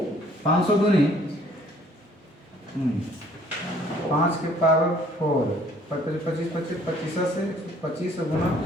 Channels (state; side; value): normal; both; correlation 0.59